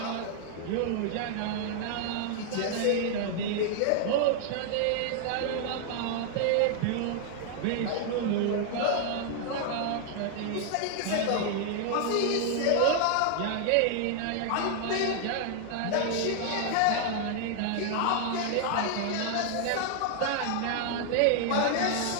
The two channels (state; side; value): different; both; correlation 0.00